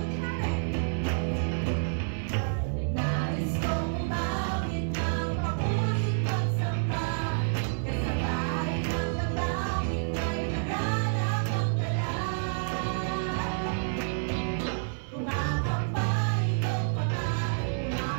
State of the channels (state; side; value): silent; left; 59 dB below the other